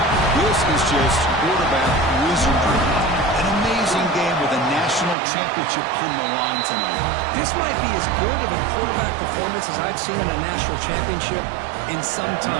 This is just quarterback wizardry. An amazing game with a national championship on the line tonight. This might be as good of a quarterback performance as I've seen in a national championship in some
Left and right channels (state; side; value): drops out; left; at 5.2 s